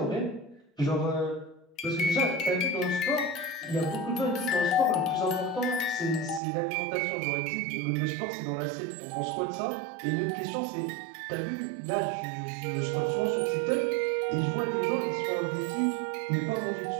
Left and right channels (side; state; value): left; drops out; at 6.4 s